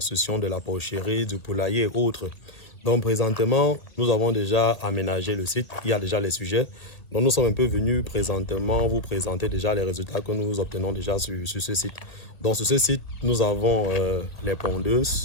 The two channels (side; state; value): right; late; 1.8 ms